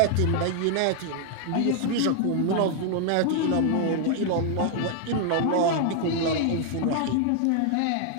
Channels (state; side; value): different; both; correlation 0.00